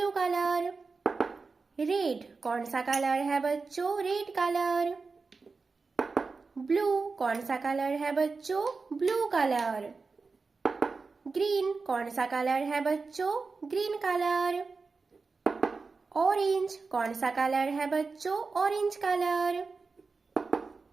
colour. रेड कौन सा कलर है बच्चों? Red colour. ब्लू कौन सा कलर है बच्चों? Blue colour. ग्रीन कौन सा कलर है बच्चों? Green colour. ऑरेंज कौन सा कलर है बच्चों? Orange colour.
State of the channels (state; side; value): quieter; left; 4.3 dB